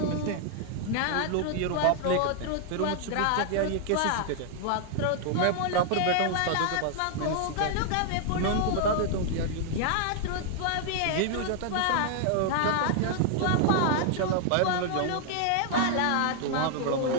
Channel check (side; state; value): both; different; correlation 0.00